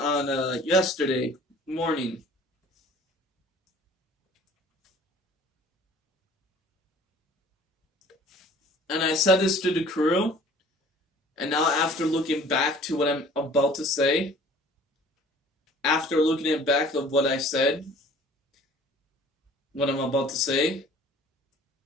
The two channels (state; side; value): normal; both; correlation 0.50